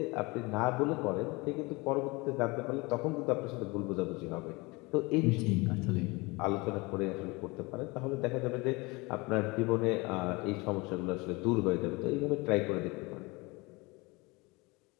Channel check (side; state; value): right; quieter; 25.0 dB